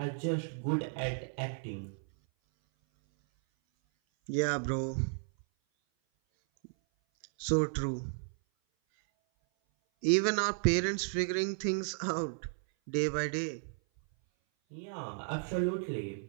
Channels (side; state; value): left; silent; 55 dB below the other